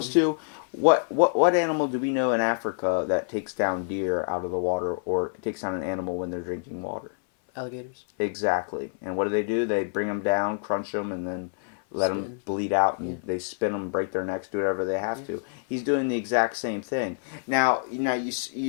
to... What animal do we know in Africa that takes down deer out of the water or takes down an animal when they're drinking water? Alligators. Exactly. And what do? They bring them down, crunch them, and then let them bleed out, and they spin them, break their necks, do whatever they have to. He's doing the exact same thing. Now you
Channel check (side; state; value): right; silent; 57 dB below the other